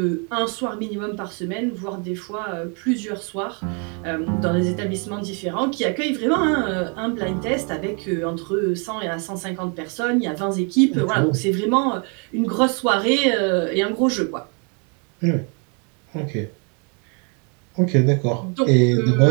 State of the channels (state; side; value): quieter; left; 36.5 dB